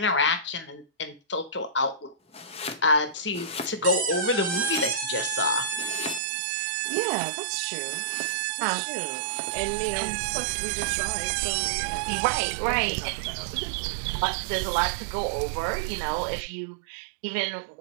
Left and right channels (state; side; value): drops out; left; at 6.2 s